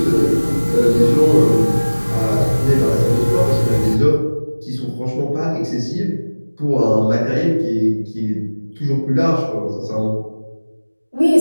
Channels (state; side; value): inverted; both; correlation -1.00